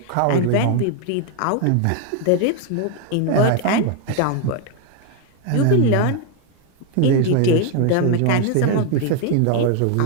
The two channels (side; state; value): both; different; correlation 0.01